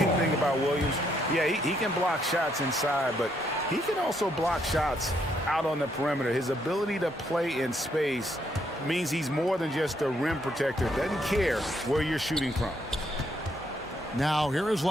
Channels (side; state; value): both; normal; correlation 0.73